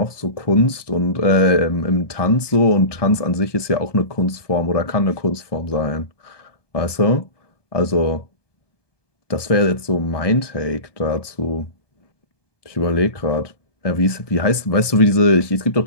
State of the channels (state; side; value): late; right; 1.2 ms